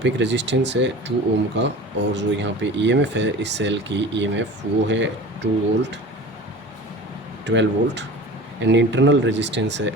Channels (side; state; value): both; normal; correlation 0.38